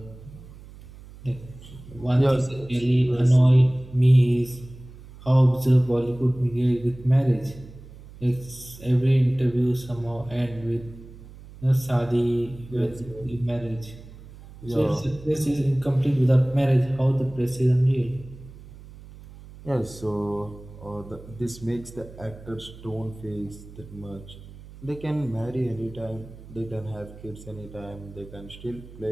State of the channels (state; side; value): noise; right; hum, 18 dB below the sound